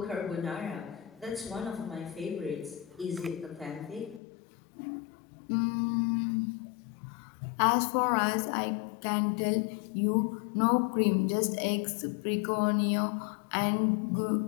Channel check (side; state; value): right; drops out; at 4.2 s